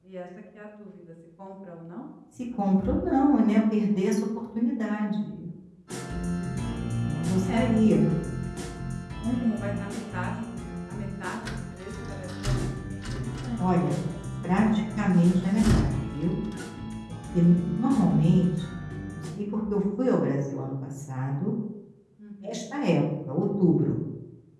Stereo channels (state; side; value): identical; both; correlation 1.00